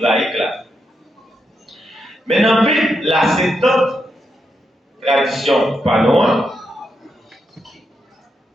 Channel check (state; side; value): normal; both; correlation 0.83